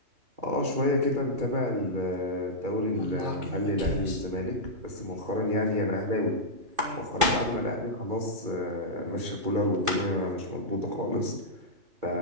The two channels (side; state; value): left; late; 2.6 ms